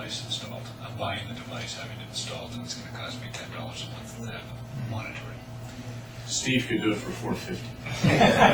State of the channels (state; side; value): identical; both; correlation 1.00